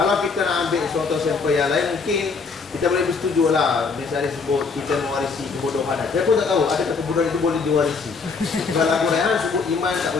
kita nak ambil suatu sampel yang lain, mungkin kita boleh bersetuju lah. Misalnya sebut kita mewarisi kebodohan. Saya pun tak tahu adakah kebodohan itu boleh diwarisi. Kalau lagu Rehan sebut iman tak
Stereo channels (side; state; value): right; quieter; 4.8 dB